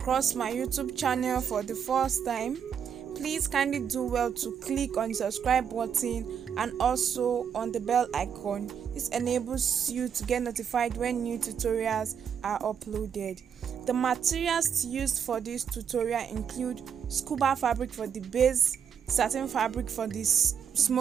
my YouTube channel for the first time, please kindly do well to click on the subscribe button and also on the bell icon. This enables you to get notified when new tutorials are uploaded. The materials used for this tutorial include scuba fabric for the base, satin fabric for this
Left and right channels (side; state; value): left; quieter; 7.7 dB